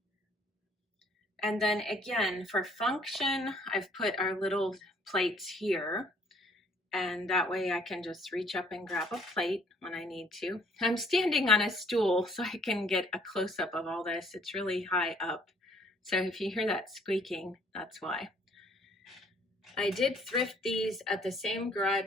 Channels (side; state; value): both; normal; correlation 0.61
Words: And then again, for function, I've put our little plates here. And that way I can just reach up and grab a plate when I need to. I'm standing on a stool so I can get a close-up of all this. It's really high up, So if you hear that squeaking, that's why. I did thrift these at the same